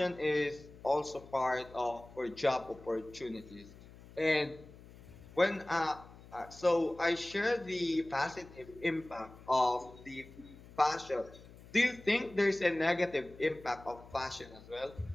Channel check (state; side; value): noise; left; hum, 20 dB below the sound